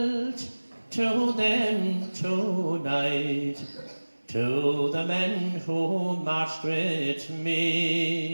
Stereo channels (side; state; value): both; inverted; correlation -1.00